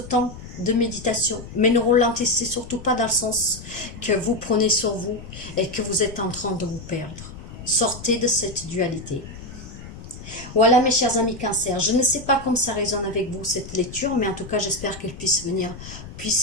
de méditation. Mais ne ralentissez surtout pas dans le sens que vous prenez sur vous et que vous êtes en train de vous perdre. Sortez de cette dualité. Voilà mes chers amis Cancer, je ne sais pas comment ça résonne avec vous cette lecture, mais en tout cas j'espère qu'elle puisse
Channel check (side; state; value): left; noise; rumble, 14 dB below the sound